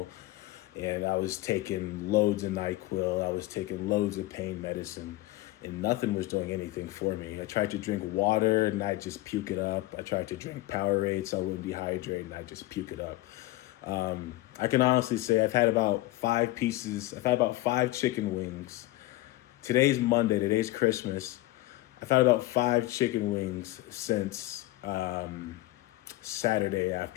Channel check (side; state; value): right; quieter; 17.8 dB